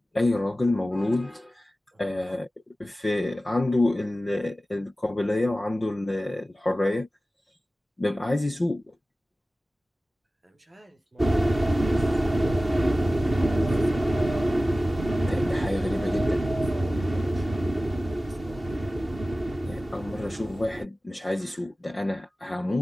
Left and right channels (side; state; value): both; normal; correlation 0.96